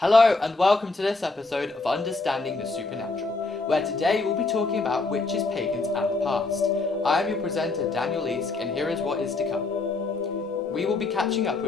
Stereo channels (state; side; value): quieter; right; 3.5 dB